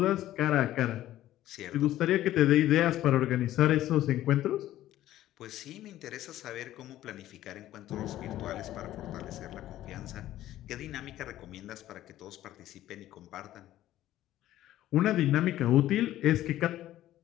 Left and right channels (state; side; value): quieter; right; 13.8 dB